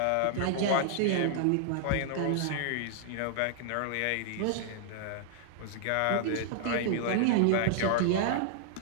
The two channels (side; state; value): both; different; correlation -0.01